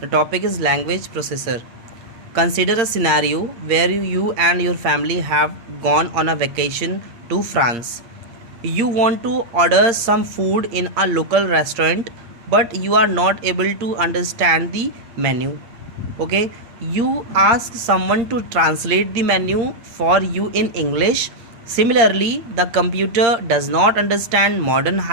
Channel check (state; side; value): late; left; 8.7 ms